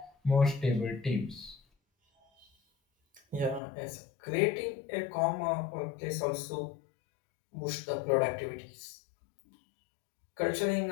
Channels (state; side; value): drops out; right; at 3.6 s